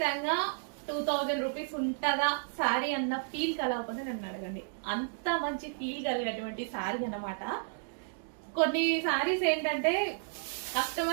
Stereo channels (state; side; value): silent; left; digital silence